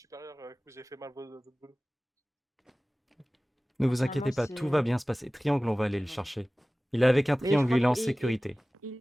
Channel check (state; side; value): normal; both; correlation 0.98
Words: que vous avez fait mal votre boulot. Ne vous Normalement, inquiétez pas, tout c'est- va bien se passer. Triangle, on va aller le chercher. Il est avec un Mais je triangle, crois il est en qu'il- sécurité.